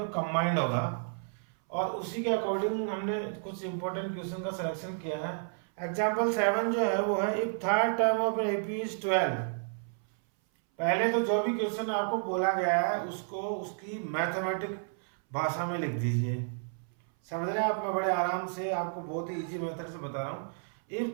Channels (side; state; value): left; silent; 57 dB below the other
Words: कंबाइंड होगा और उसी के अकॉर्डिंग हमने कुछ इंपॉर्टेंट क्वेश्चन का सिलेक्शन किया है। एग्जाम्पल 7 जो है वो है if third term of AP is 12। पहले तो जो भी क्वेश्चन आपको बोला गया है उसको उसकी मैथमेटिक भाषा में लिख दीजिए, समझ रहे हैं आप। मैं बड़े आराम से आपको बहुत ही इजी मेथड से बता रहा हूँ। If